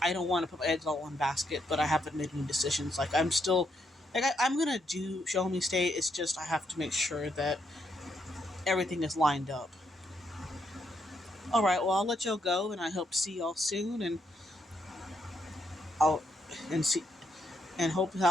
I don't want to put my eggs all in one basket, but I haven't made any decisions. Like, I'm still, like, I'm gonna do show me state. It's just I have to make sure that everything is lined up. All right, well, I'll let y'all go, and I hope to see y'all soon, and I'll and see and hope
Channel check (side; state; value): both; normal; correlation 0.77